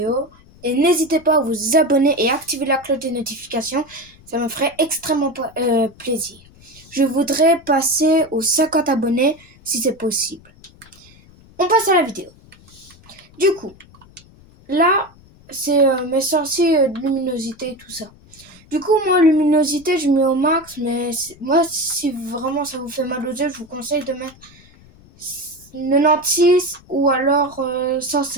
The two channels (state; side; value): noise; left; rumble, 25 dB below the sound